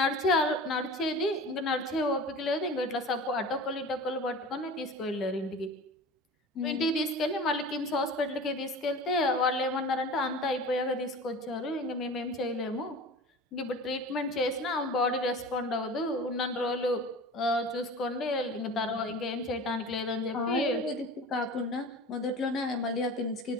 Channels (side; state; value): both; normal; correlation 0.36